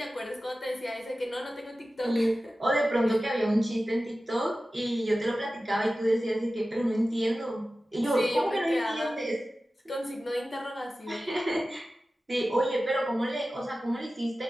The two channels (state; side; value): normal; both; correlation 0.95